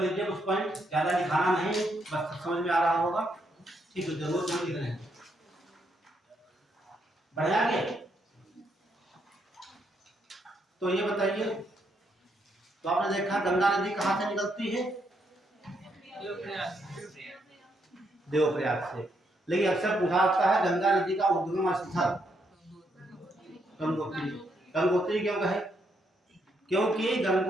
कुछ पॉइंट, ज्यादा लिखाना नहीं, बस समझ में आ रहा होगा, ठीक है, जरूर समझ लिख रहे हैं। बढ़िया आगे, तो ये बताइए, तो आपने देखा गंगा नदी कहाँ से निकलती है, देवप्रयाग से। लेकिन अक्सर पूछा जाता है गंगा नदी का उद्गम स्थल गंगोत्री, गंगोत्री क्यों कहे, क्योंकि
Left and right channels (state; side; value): normal; both; correlation 0.76